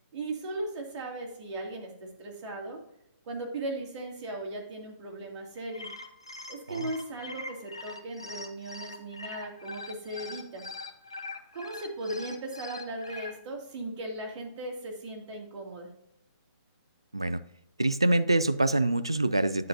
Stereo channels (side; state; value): both; inverted; correlation -0.77